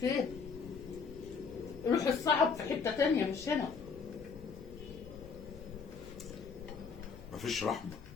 ماشي. روح الصعب في حتة تانية مش هنا. مفيش رحمه.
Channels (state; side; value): quieter; right; 5.4 dB